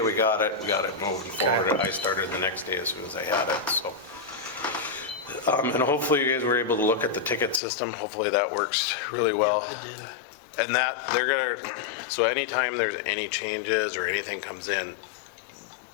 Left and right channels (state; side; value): drops out; right; at 7.6 s